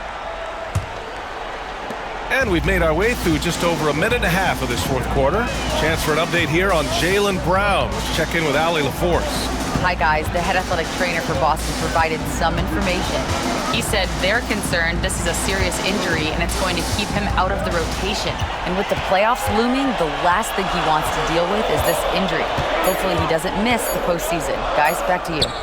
And we've made our way through just over a minute and a half of this fourth quarter. Chance for an update here on Jaylen Brown. Let's check in with Allie LaForce. Hi, guys. The head athletic trainer for Boston provided some information. He said they're concerned this is a serious injury and it's going to keep him out of the rotation. And with the playoffs looming, the last thing he wants to deal with is this injury. Hopefully he doesn't miss the postseason. Guys, back to you.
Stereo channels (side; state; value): both; identical; correlation 1.00